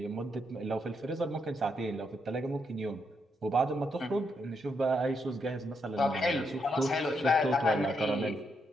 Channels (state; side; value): normal; both; correlation 0.79